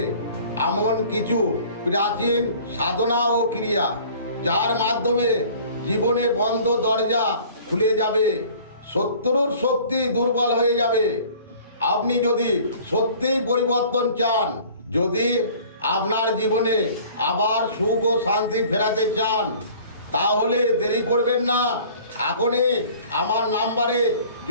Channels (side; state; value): both; inverted; correlation -0.49